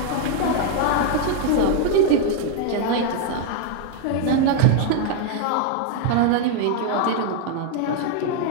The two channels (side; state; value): both; different; correlation 0.00